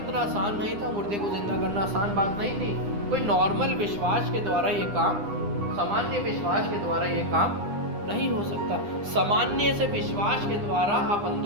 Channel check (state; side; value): late; left; 9.8 ms